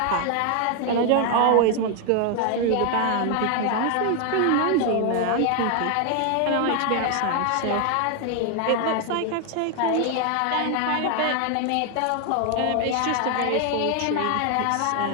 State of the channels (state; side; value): different; both; correlation 0.00